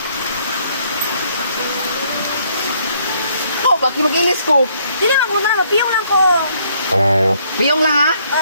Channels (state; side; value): inverted; both; correlation -0.67